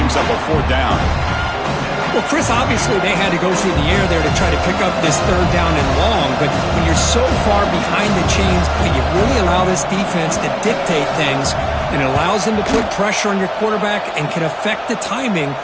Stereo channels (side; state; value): both; identical; correlation 1.00